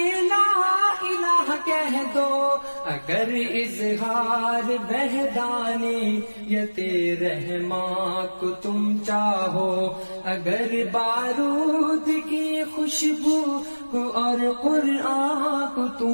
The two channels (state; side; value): inverted; both; correlation -1.00